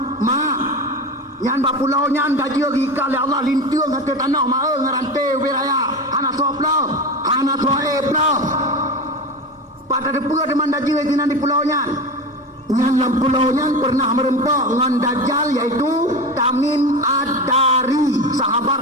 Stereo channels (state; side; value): normal; both; correlation 0.25